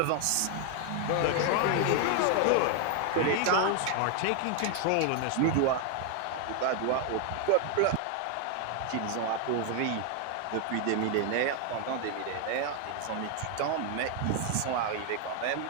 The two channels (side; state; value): both; different; correlation 0.00